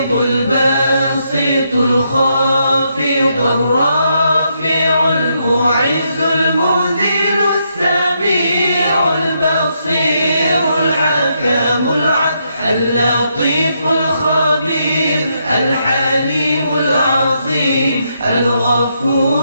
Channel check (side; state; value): both; inverted; correlation -0.78